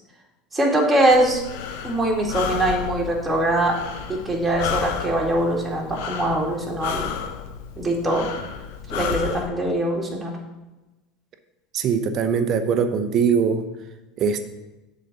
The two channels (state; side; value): normal; both; correlation 0.50